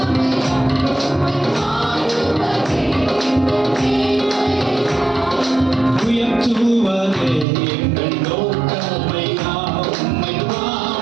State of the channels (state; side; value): drops out; left; at 7.5 s